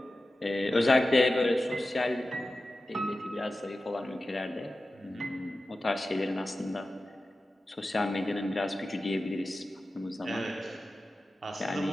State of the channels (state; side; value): normal; both; correlation 0.94